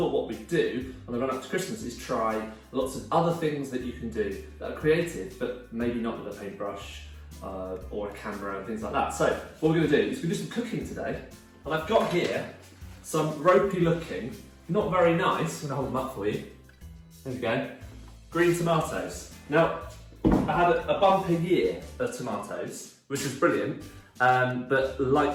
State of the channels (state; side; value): identical; both; correlation 1.00